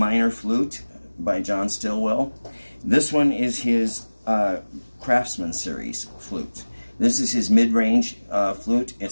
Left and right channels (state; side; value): inverted; both; correlation -1.00